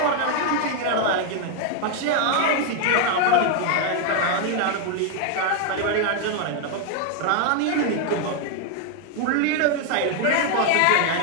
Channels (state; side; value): different; both; correlation 0.00